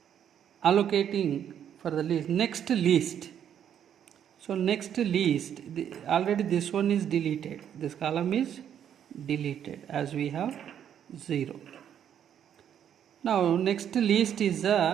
allocating for the next least, so next least, already this one is deleted, this column is deleted as we have 0. Now next least is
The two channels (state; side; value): quieter; left; 9.3 dB